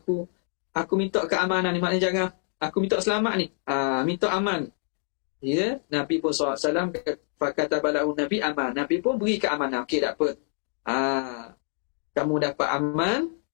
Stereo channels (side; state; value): right; silent; 61 dB below the other